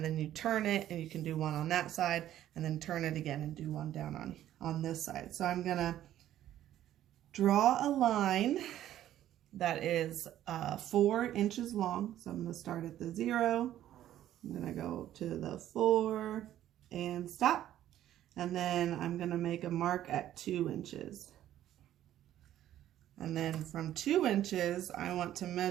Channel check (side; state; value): left; quieter; 12.3 dB